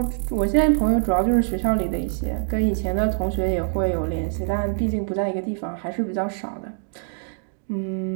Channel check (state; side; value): silent; left; digital silence